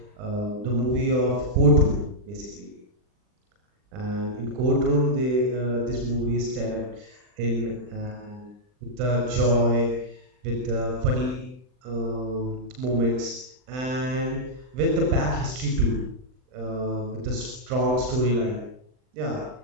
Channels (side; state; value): left; late; 39 ms